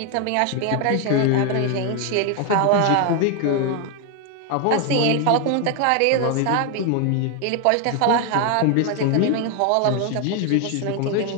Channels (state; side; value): different; both; correlation 0.01